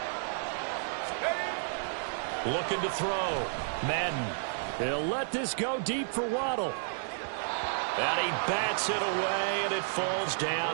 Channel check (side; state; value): left; silent; 55 dB below the other